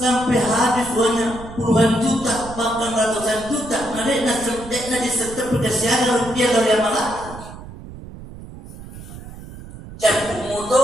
habis uangnya puluhan juta bahkan ratusan juta, nah di setiap perkasian rupiah dari amalan campur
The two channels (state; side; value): noise; right; rumble, 14 dB below the sound